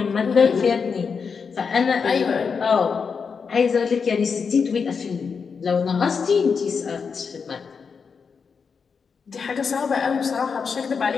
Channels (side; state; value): right; quieter; 5.7 dB